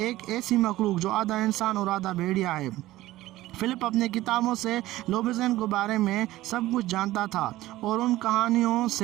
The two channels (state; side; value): quieter; left; 16.4 dB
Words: ایسی مخلوق جو آدھا انسان اور آدھا بھیڑیا ہے۔ فلپ اپنے کتابوں سے لوبیزن کے بارے میں سب کچھ جانتا تھا اور ان کہانیوں